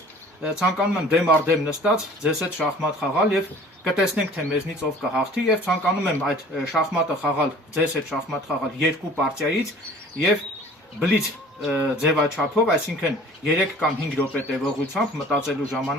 ցանկանում եմ դեմ առ դեմ նստած ձեզ հետ շախմատ խաղալ եւ կտեսնենք թե մեզնից ով կհաղթի եւ ցանկանում եմ այդ շախմատը խաղալ ձեզ հետ շախմատ խաղալ երկու պարտիայից եւ բլից ձևաչափով, այսինքն 3 կամ 5 րոպե տևողությամբ մտածելու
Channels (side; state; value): both; normal; correlation 0.48